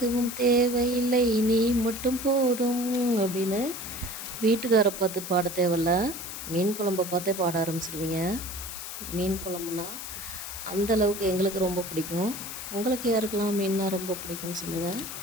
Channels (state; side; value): noise; left; hiss, 9 dB below the sound